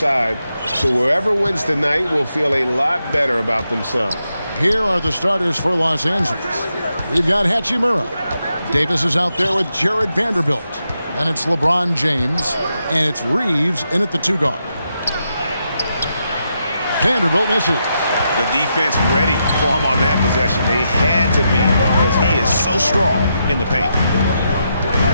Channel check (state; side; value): inverted; both; correlation -0.83